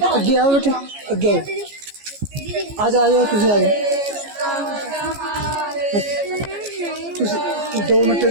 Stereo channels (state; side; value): late; left; 14 ms